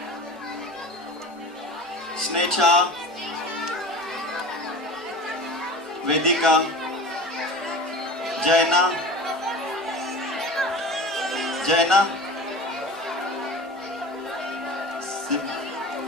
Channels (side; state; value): both; normal; correlation 0.36